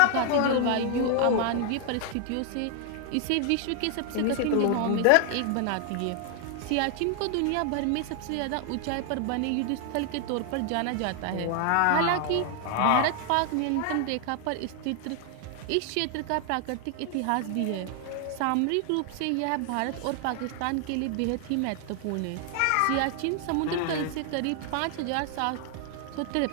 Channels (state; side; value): different; both; correlation 0.00